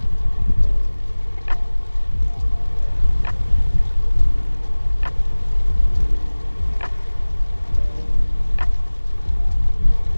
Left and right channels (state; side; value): inverted; both; correlation -1.00